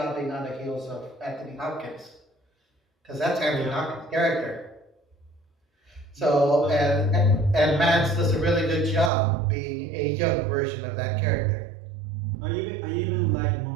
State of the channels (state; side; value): drops out; left; at 9.1 s